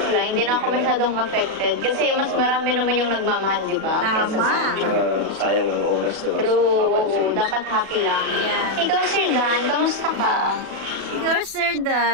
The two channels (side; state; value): left; late; 37 ms